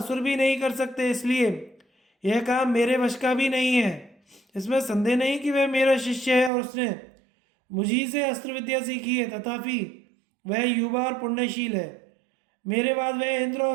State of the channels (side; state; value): left; drops out; at 6.5 s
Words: भी नहीं कर सकते, इसलिए यह काम मेरे वश का भी नहीं है। इसमें संदेह नहीं कि वह मेरा शिष्य है और उसने मुझी से अस्त्र विद्या सीखी है, तथापि वह युवा और पुण्यशील है। मेरे बाद वह इंद्र